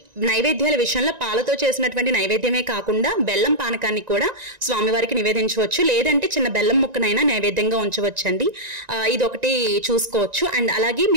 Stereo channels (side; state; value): left; late; 1.9 ms